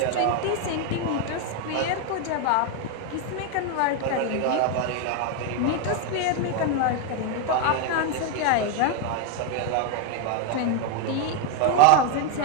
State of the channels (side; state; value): both; different; correlation 0.01